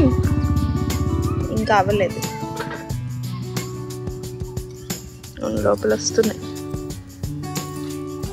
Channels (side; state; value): both; identical; correlation 1.00